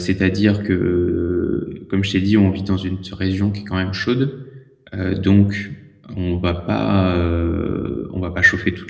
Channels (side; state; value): both; identical; correlation 1.00